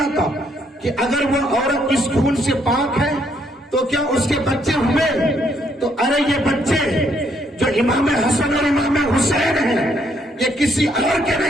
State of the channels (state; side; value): normal; both; correlation 0.71